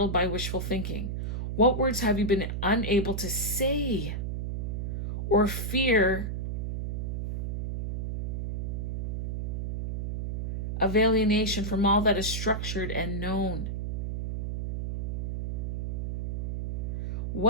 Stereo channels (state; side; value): noise; right; hum, 2 dB below the sound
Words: by wishful thinking? What words have you been unable to say? Or fear of alienation from all that is structured and known?